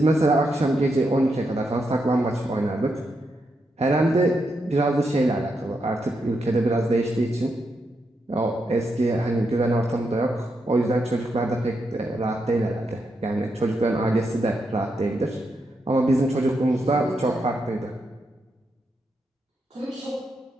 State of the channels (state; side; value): normal; both; correlation 0.83